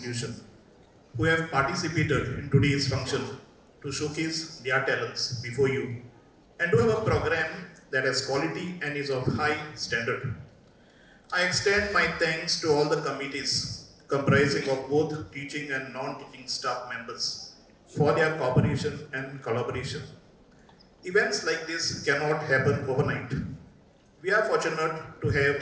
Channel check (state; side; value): identical; both; correlation 1.00